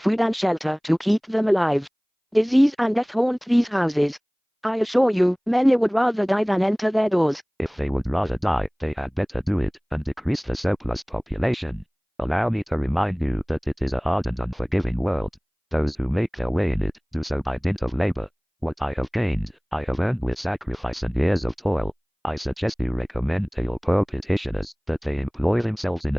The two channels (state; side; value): identical; both; correlation 1.00